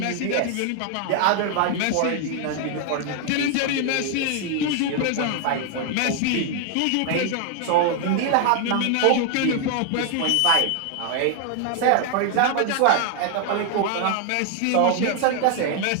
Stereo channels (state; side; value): different; both; correlation 0.00